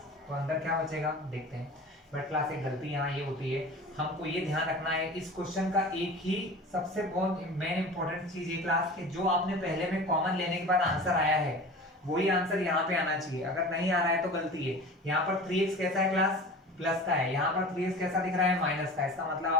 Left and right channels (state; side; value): normal; both; correlation 0.37